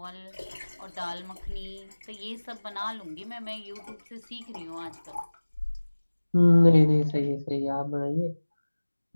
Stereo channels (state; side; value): inverted; both; correlation -1.00